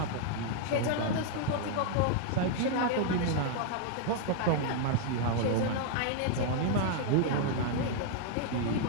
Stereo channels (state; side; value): different; both; correlation -0.01